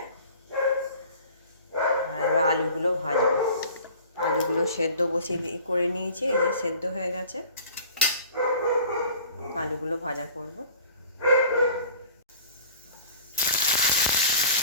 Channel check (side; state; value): both; inverted; correlation -0.45